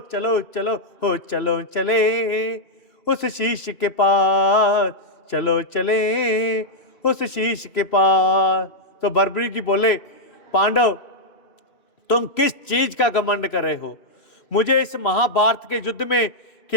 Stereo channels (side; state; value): right; late; 2.9 ms